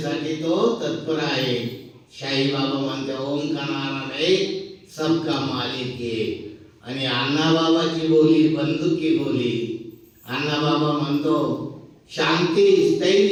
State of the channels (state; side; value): identical; both; correlation 1.00